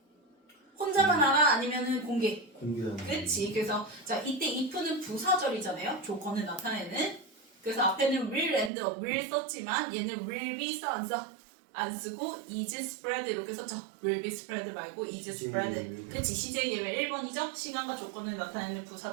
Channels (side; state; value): left; drops out; at 8.7 s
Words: 혼자만 알아? 아니면은 공개하는. 그렇지. 그래서 자, 이때 if는 부사절이잖아요. 조건을 나타내는. 그래서 앞에는 will and will 썼지만 얘는 will be 써 안 써? 안 쓰고 is spread 이렇게 썼죠. will be spread 말고 is spread. 그치. CJ 예외 1번이죠. 시간과 조건을 나타내는